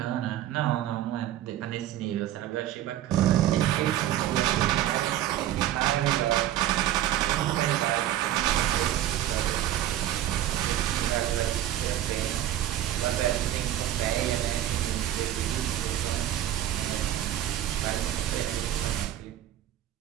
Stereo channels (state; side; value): quieter; left; 12.6 dB